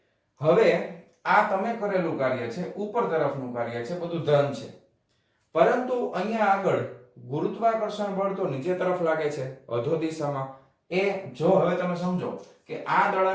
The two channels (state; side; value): identical; both; correlation 1.00